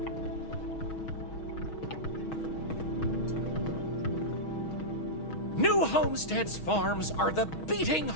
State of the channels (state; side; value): late; right; 6.3 ms